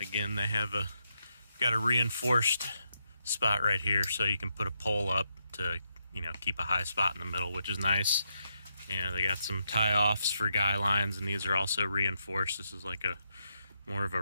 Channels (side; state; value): both; inverted; correlation -0.81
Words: they have got a reinforced spot right here, so you can put a pole up to keep a high spot in the middle, which is nice. They got some tie-offs for guy lines, and these are also reinforced. This is like more of a